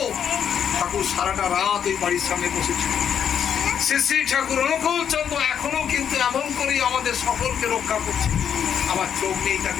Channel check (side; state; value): right; quieter; 8.3 dB